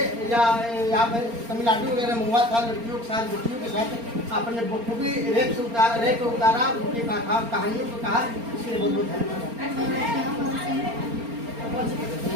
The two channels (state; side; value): late; left; 4.3 ms